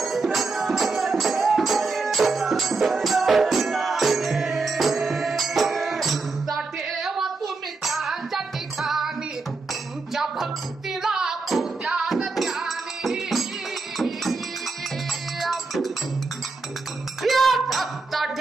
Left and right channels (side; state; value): left; quieter; 3.9 dB